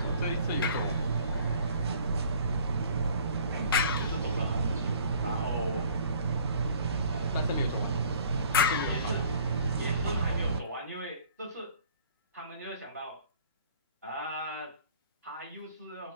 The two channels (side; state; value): both; inverted; correlation -0.54